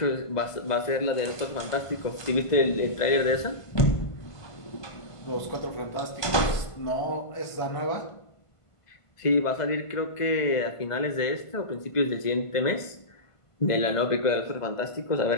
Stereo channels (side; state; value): right; late; 1.5 ms